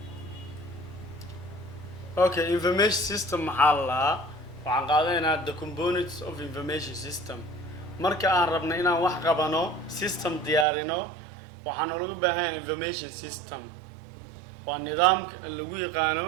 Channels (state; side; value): drops out; left; at 10.7 s